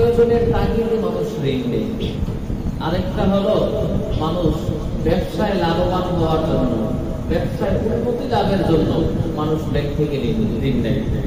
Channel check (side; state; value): both; identical; correlation 1.00